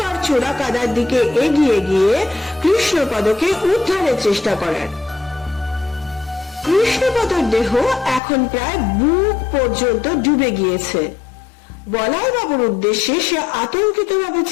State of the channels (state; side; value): drops out; right; at 8.2 s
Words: চোরা কাদার দিকে এগিয়ে গিয়ে কৃষ্ণপদকে উদ্ধারের চেষ্টা করার। কৃষ্ণপদর দেহ এখন প্রায় বুক পর্যন্ত ডুবে গিয়েছে। বলাইবাবুর উদ্দেশ্যে সে আতঙ্কিত ভাবে